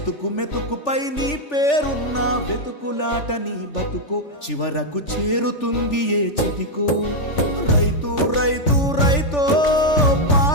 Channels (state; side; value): late; right; 3.4 ms